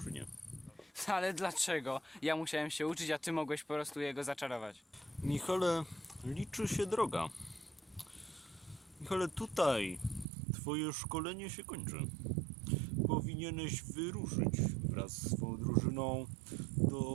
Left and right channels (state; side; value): drops out; left; at 10.2 s